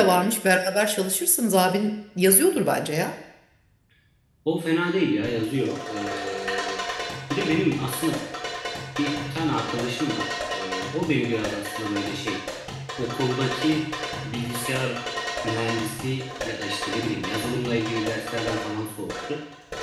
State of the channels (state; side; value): identical; both; correlation 1.00